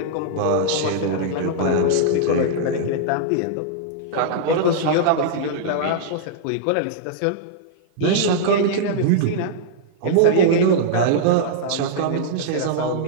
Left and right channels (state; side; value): different; both; correlation -0.02